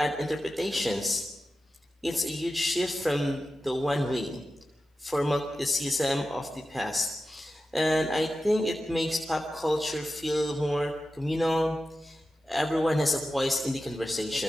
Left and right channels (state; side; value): normal; both; correlation 0.93